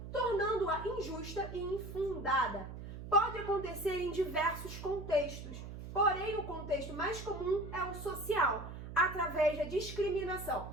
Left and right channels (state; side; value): noise; right; hum, 10 dB below the sound